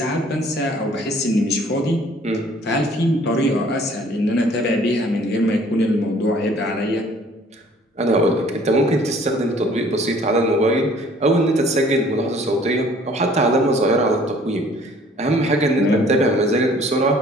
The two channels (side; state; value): both; normal; correlation 0.55